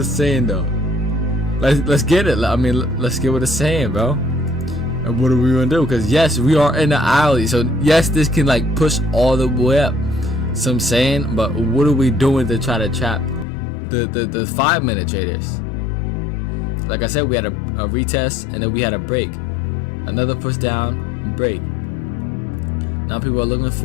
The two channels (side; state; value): right; drops out; at 13.5 s